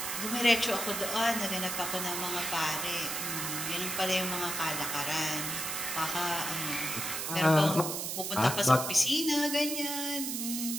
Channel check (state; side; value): noise; right; hiss, 3 dB below the sound